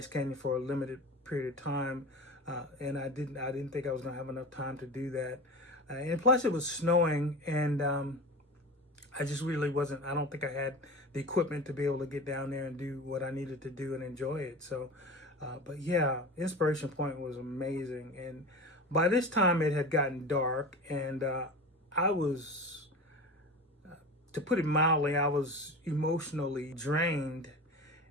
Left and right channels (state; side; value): normal; both; correlation 0.31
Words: Canyon for a limited period of time, and I didn't think I was going to have enough time to do that. And plus, it was snowing, and I just really wasn't. I don't think I had the equipment to be able to get down there and do what I needed to do and enjoy it. So, but yeah, Inspiration Point was amazing. And by this time, it had gotten dark, and I was, to put it mildly, I was emotionally drained